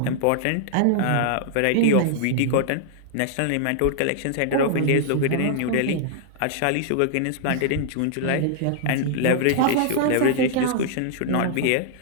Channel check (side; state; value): both; different; correlation -0.01